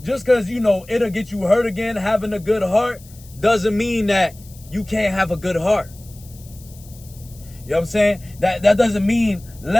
just because, it'll get you hurt again, having a good heart, doesn't mean that you can't have a good heart. You know what I'm saying? That doesn't mean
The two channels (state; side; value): noise; left; hiss, 23 dB below the sound